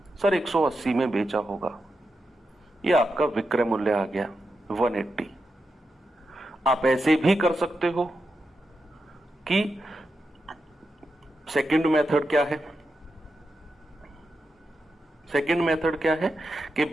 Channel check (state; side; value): normal; both; correlation 0.88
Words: सर 180 में बेचा होगा। ये आपका विक्रय मूल्य आ गया 180। आप ऐसे भी कर सकते हो कि सेकंड मेथड क्या है, सेकंड मेथड क्या है कि